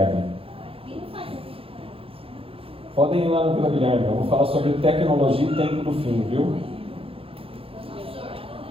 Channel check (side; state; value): left; late; 0.27 ms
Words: Podem ir lá na Vila Guilherme, eu vou falar sobre tecnologia e tempo do fim, viu?